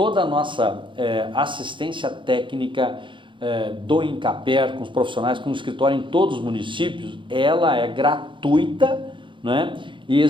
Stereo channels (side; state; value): left; late; 0.24 ms